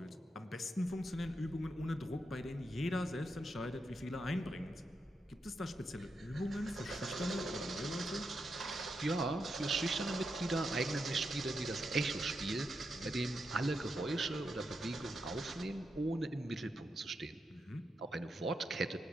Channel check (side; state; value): both; normal; correlation 0.85